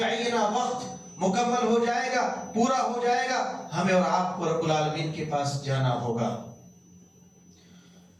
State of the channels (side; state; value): both; identical; correlation 1.00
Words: وقت مکمل ہو جائے گا، پورا ہو جائے گا، ہمیں اور آپ کو رب العالمین کے پاس جانا ہوگا۔